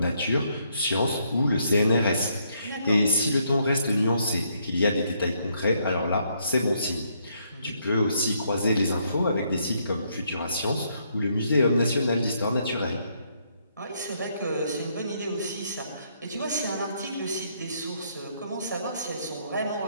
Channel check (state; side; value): inverted; both; correlation -0.72